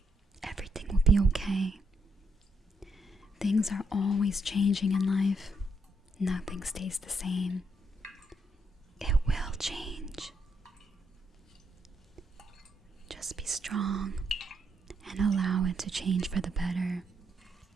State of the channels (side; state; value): both; normal; correlation 0.75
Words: Everything will be okay. Things are always changing in life. Nothing stays the same. It will change. Just be strong and allow it to change for the better.